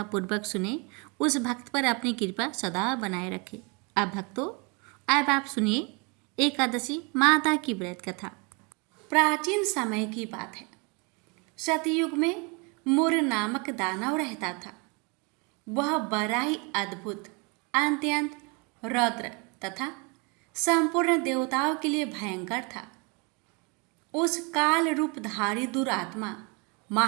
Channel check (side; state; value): left; quieter; 31.2 dB